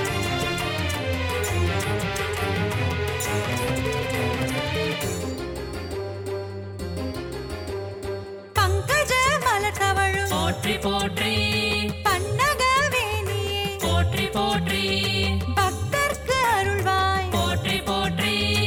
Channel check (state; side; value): identical; both; correlation 1.00